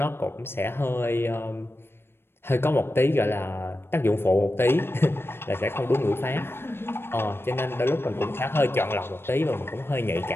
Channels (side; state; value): right; late; 0.11 ms